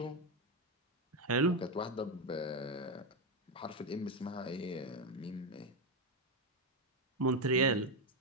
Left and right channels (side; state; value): both; normal; correlation 0.08